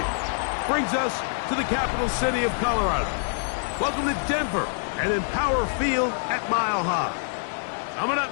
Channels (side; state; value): right; silent; digital silence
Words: Brings us to the capital city of Colorado. Welcome to Denver and Empower Field at Mile High. Coming up,